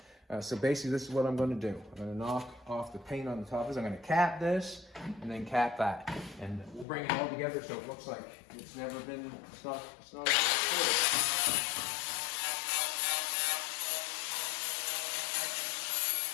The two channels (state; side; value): drops out; right; at 6.9 s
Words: So basically, this is what I'm going to do. I'm going to knock off the paint on the top. I'm going to cap this and then cap that, and we'll bring it all together so it looks like it's never been. It's not.